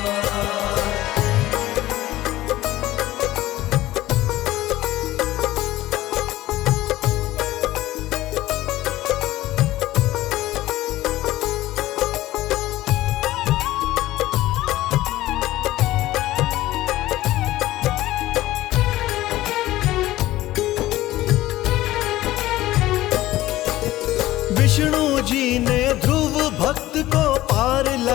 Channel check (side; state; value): right; quieter; 16.1 dB